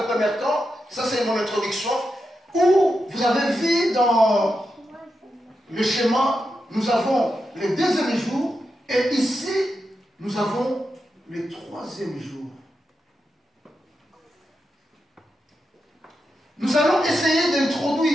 premier temps, ça c'est mon introduction, où vous avez vu dans le schéma, nous avons le deuxième jour, et ici, nous avons le troisième jour. Nous allons essayer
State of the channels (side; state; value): both; normal; correlation 0.87